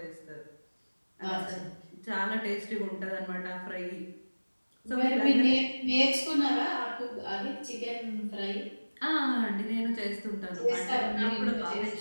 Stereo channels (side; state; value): both; inverted; correlation -1.00